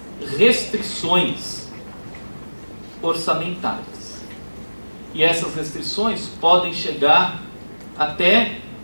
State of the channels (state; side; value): inverted; both; correlation -1.00